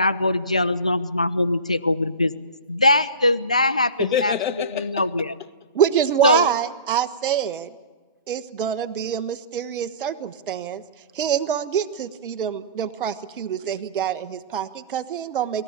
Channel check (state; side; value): inverted; both; correlation -0.36